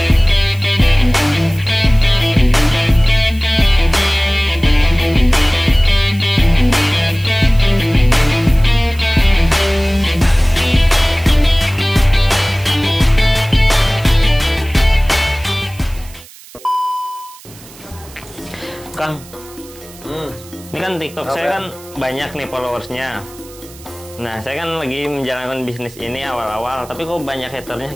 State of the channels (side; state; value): right; noise; hiss, 21 dB below the sound